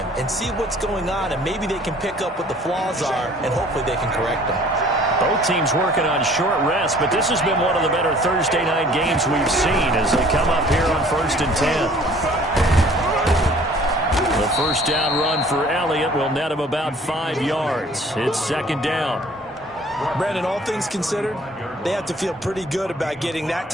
and see what's going on, and maybe they can pick up what the flaws are, and hopefully they can correct them. Both teams working on short rest, but this has been one of the better Thursday night games we've seen as they come up here on 1st and 10. The 1st down run for Elliott will net him about 5 yards. It's 2nd down. Brandon, all things considered, they have to feel pretty good about getting that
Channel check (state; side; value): normal; both; correlation 0.53